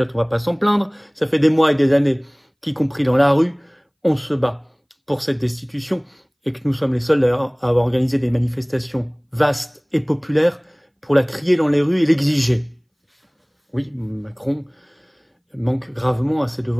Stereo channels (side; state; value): both; identical; correlation 1.00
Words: on va pas s'en plaindre. Ça fait des mois et des années qu'y compris dans la rue, on se bat pour cette destitution et que nous sommes les seuls d'ailleurs à avoir organisé des manifestations vastes et populaires pour la crier dans les rues et l'exiger. Oui, Macron manque gravement à ses